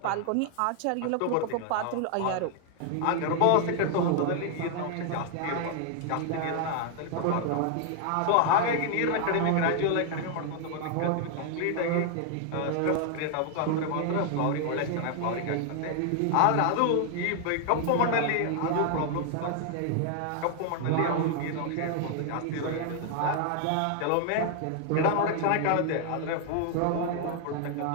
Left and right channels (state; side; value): different; both; correlation 0.00